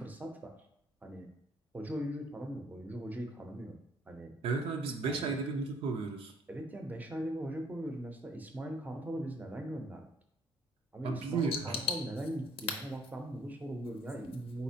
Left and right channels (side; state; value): both; normal; correlation 0.62